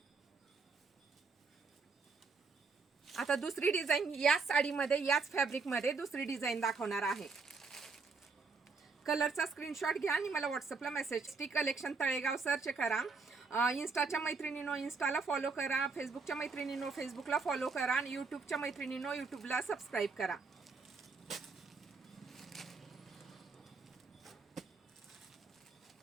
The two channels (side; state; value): left; quieter; 4.5 dB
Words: आता दुसरी डिझाईन याच साडीमध्ये याच फॅब्रिकमध्ये दुसरी डिझाईन दाखवणार आहे। कलरचा स्क्रीनशॉट घ्या आणि मला व्हॉट्सअपला message. T collection Talegaon search करा। इंस्टाच्या मैत्रिणींनो इंस्टाला फॉलो करा, फेसबुकच्या मैत्रिणींनो फेसबुकला फॉलो करा आणि यूट्यूबच्या मैत्रिणींनो यूट्यूबला सबस्क्राईब करा।